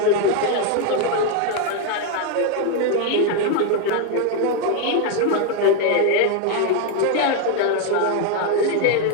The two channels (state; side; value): different; both; correlation 0.01